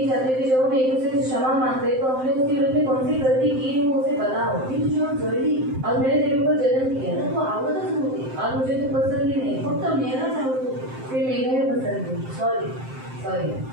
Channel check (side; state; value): left; late; 7.7 ms